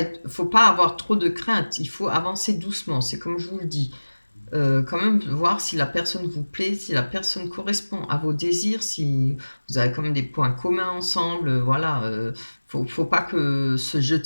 faut pas avoir trop de crainte. Il faut avancer doucement. C'est comme je vous le dis. Quand même voir si la personne vous plaît, si la personne correspond à vos désirs, si vous avez quand même des points communs ensemble. Voilà. Faut pas que se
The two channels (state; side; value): inverted; both; correlation -1.00